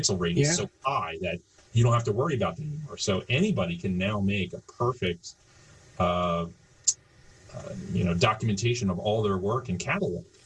rate is so high that you don't have to worry about it anymore. So anybody can now make a perfect documentation of all their work and catalog.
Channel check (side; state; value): both; identical; correlation 1.00